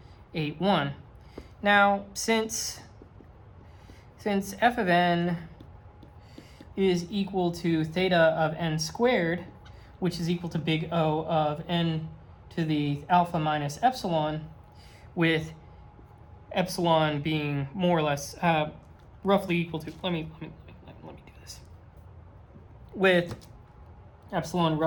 Now, since f of n is equal to theta of n squared, which is equal to big O of n to the alpha minus epsilon, with epsilon being more or less roughly equal to, let me do this, with epsilon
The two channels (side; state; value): both; identical; correlation 1.00